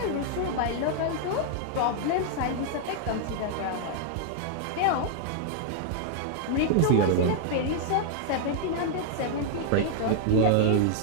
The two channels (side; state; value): both; different; correlation -0.01